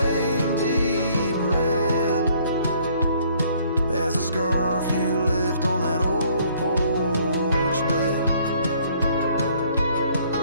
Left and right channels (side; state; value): both; inverted; correlation -0.61